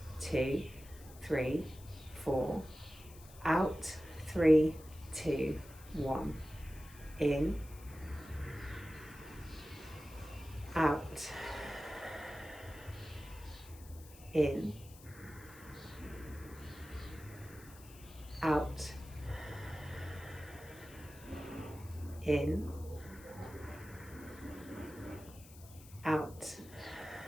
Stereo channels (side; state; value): left; noise; hiss, 20 dB below the sound